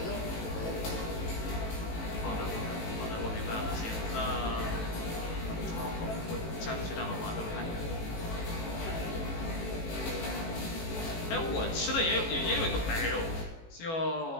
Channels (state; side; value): late; right; 18 ms